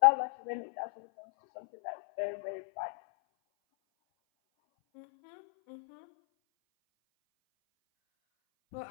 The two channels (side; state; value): right; silent; 55 dB below the other